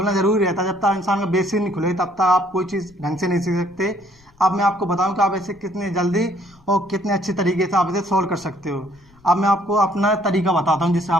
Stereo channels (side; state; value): left; noise; rumble, 30 dB below the sound